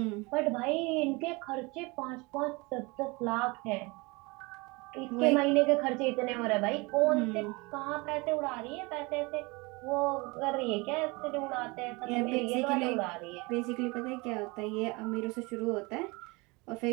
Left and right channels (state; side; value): quieter; left; 26.0 dB